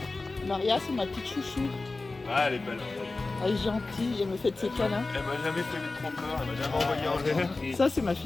Maria, c'est ma petite chouchou. Ah, elle est belle. Elle est gentille, elle me fait de ses câlins. Elle m'a jamais fait trop peur, elle m'a jamais envoyé en l'air. Ça, c'est ma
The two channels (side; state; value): right; quieter; 3.5 dB